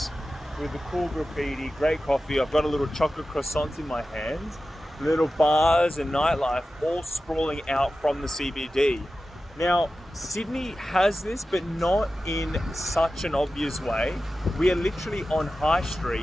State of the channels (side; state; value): both; normal; correlation 0.94